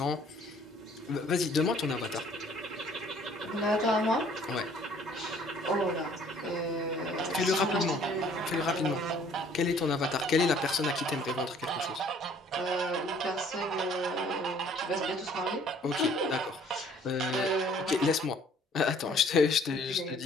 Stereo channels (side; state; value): both; normal; correlation 0.57